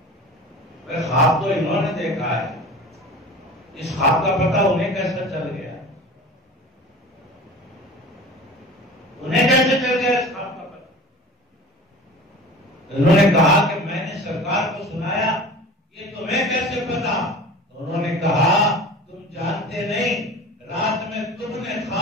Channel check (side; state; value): both; normal; correlation 0.38